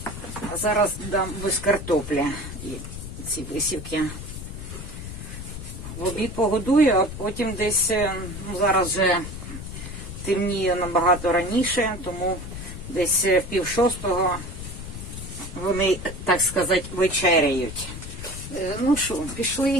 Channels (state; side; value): noise; left; rumble, 9 dB below the sound